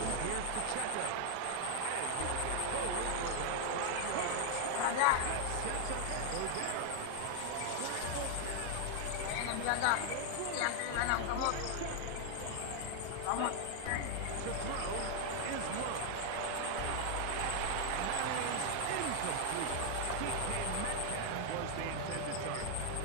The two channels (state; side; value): different; both; correlation 0.00